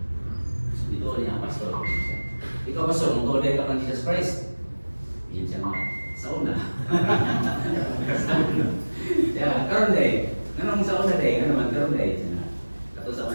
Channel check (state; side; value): inverted; both; correlation -1.00